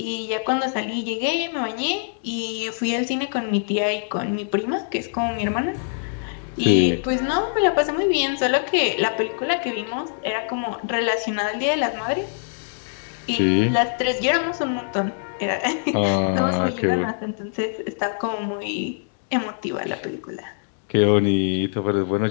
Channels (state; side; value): silent; right; digital silence